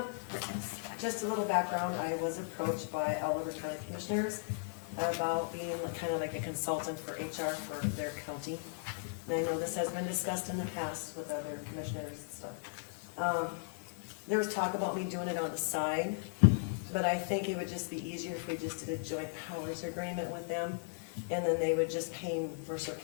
Just a little background, I was approached by Oliver County Commissioners about being kind of like a consultant for HR for their county. And I know this has been discussed in the past with other commissioners and stuff. There was talk about me doing it on the side, but I think it would just be easier if we just did a joint powers agreement with them. And then they would just pay Mercer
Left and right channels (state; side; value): silent; right; 53 dB below the other